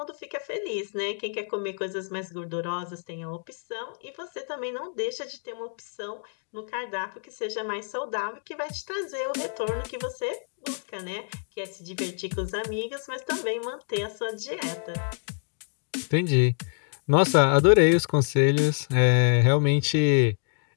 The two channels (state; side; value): silent; right; 59 dB below the other